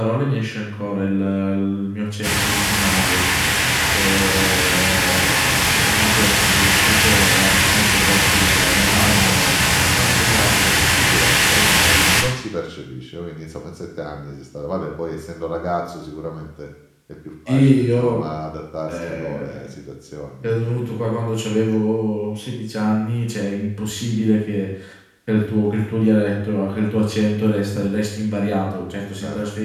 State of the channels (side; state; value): both; identical; correlation 1.00